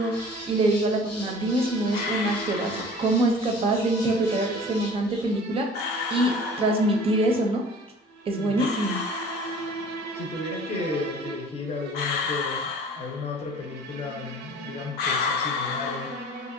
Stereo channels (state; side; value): normal; both; correlation 0.46